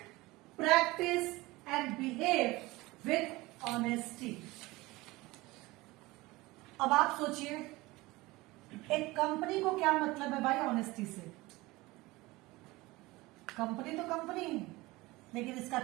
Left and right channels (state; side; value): quieter; left; 20.8 dB